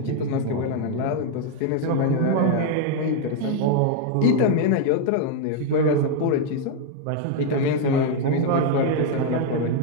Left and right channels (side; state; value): both; different; correlation 0.00